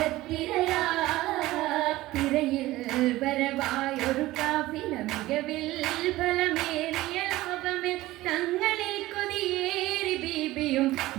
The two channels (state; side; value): quieter; left; 17.4 dB